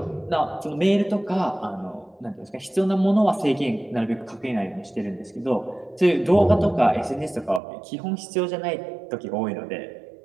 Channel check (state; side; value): drops out; left; at 7.6 s